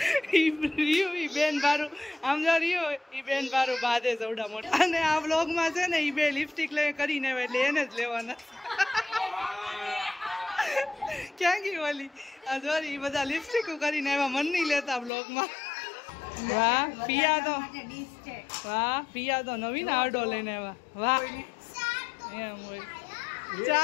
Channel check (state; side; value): drops out; right; at 15.1 s